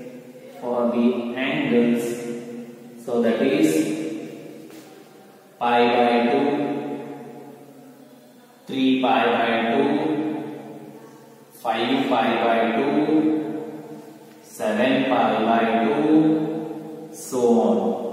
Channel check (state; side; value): identical; both; correlation 1.00